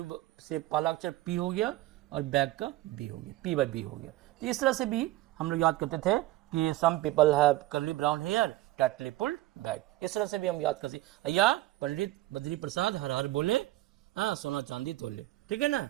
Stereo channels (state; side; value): quieter; left; 16.9 dB